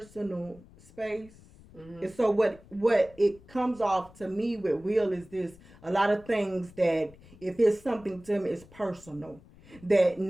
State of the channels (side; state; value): left; noise; rumble, 23 dB below the sound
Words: space. And so what it comes off to me with Will is this: a lot of things that if it's something to him, it's personal. That